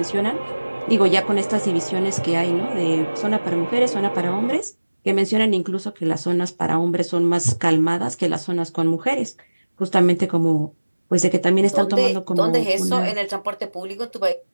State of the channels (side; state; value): both; inverted; correlation -1.00